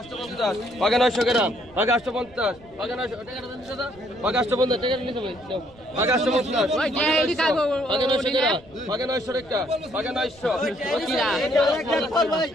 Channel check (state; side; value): noise; right; rumble, 25 dB below the sound